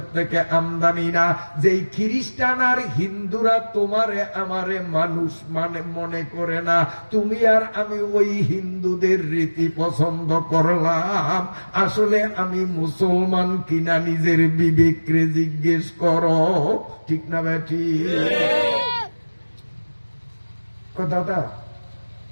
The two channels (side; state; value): both; inverted; correlation -1.00